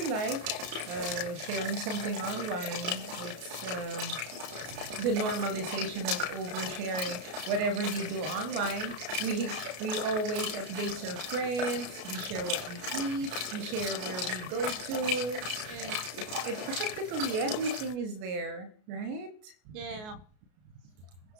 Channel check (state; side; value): late; left; 33 ms